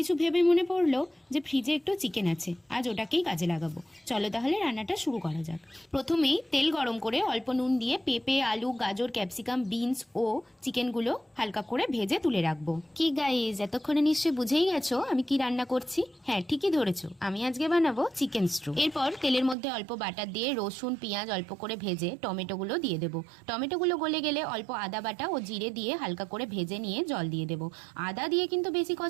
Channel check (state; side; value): drops out; left; at 19.6 s